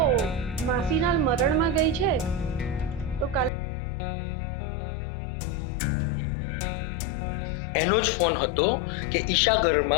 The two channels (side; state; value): right; drops out; at 3.5 s